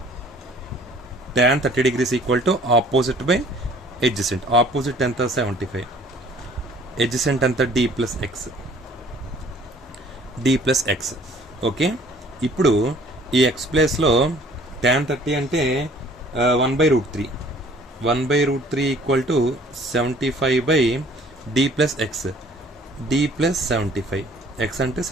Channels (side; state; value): both; normal; correlation 0.54